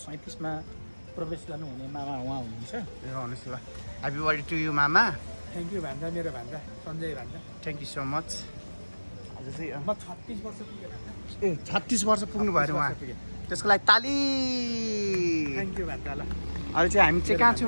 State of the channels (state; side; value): inverted; both; correlation -1.00